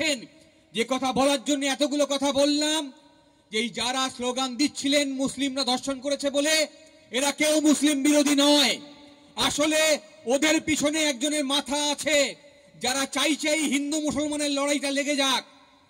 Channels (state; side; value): identical; both; correlation 1.00